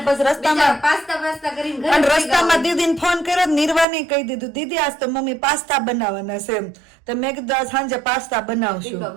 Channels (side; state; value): left; drops out; at 3.9 s